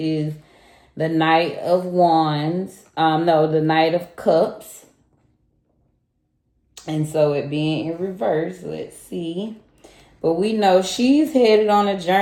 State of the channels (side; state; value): both; identical; correlation 1.00